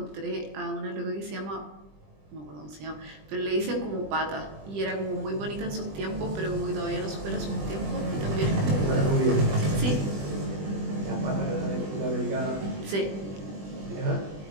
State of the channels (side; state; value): left; late; 20 ms